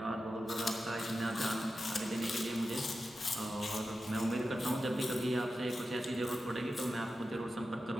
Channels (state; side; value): normal; both; correlation 0.91